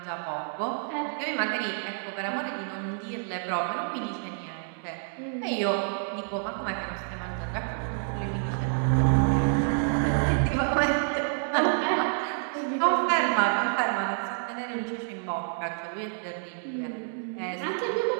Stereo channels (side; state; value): left; silent; digital silence